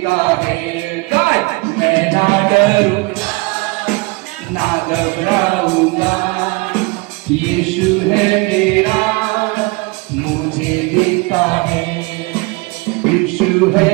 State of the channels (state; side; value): quieter; left; 25.4 dB